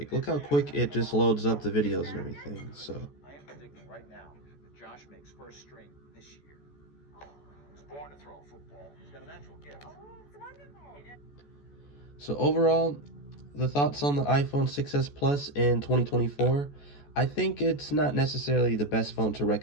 look how quick it just loads up the videos and everything. So, I am predicting right now that Josh makes first string this year. He's born to throw a football. He's got a natural gift. so overall, the thoughts on the iPhone 6s Plus in 2024. I think it's not necessarily the best phone to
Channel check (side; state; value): right; late; 14 ms